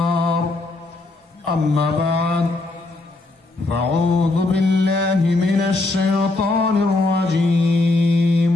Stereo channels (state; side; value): quieter; right; 3.0 dB